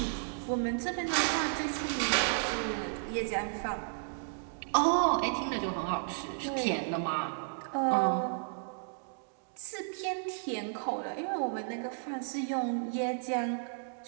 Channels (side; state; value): left; silent; digital silence